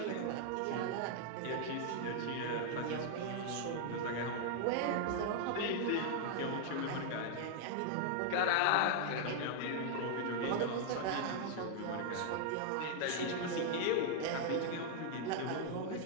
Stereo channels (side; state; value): both; different; correlation 0.00